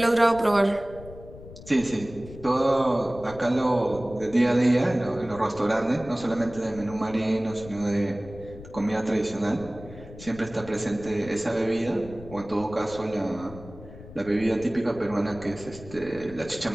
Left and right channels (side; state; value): left; noise; rumble, 16 dB below the sound